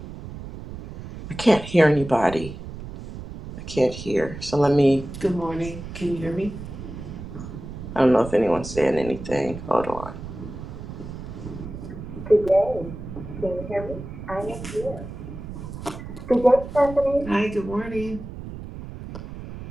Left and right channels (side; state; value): right; noise; rumble, 11 dB below the sound